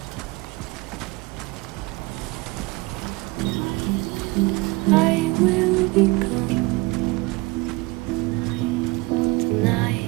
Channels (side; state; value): left; quieter; 23.6 dB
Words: I will be gone tonight.